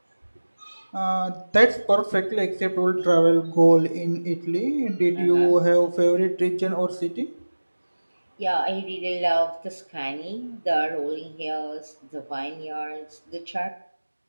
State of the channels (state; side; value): inverted; both; correlation -1.00